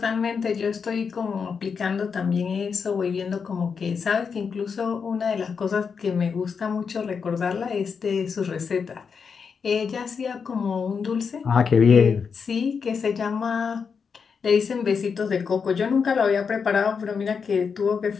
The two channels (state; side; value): quieter; right; 5.9 dB